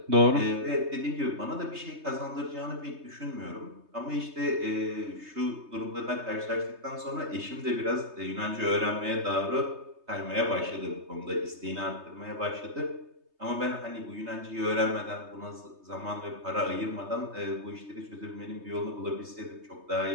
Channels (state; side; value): late; left; 3.2 ms